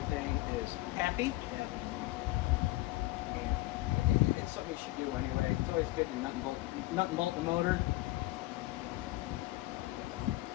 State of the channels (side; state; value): right; quieter; 18.7 dB